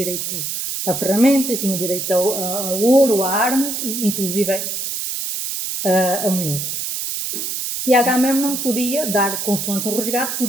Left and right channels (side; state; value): right; noise; hiss, 3 dB below the sound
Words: a ferramentas, tinha o direito a ouro, a armas, e inclusive a mulheres. E Agamemnon podia dar, consoante um resgate,